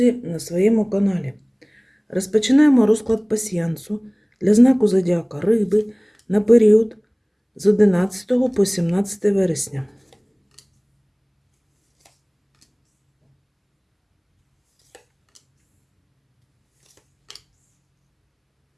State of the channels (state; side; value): identical; both; correlation 1.00